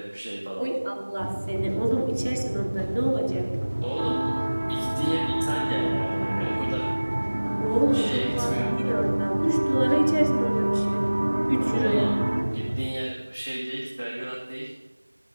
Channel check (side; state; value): both; inverted; correlation -1.00